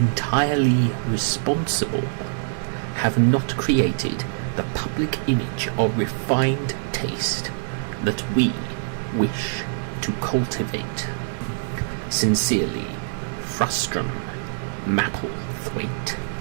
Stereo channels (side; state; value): left; silent; digital silence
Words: responsible, have not created the public image of refined taste that we wish to cultivate. Sincerely, Frustrum Mapplethwaite.